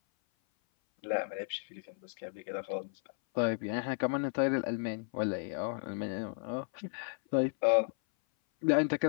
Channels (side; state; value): right; silent; 55 dB below the other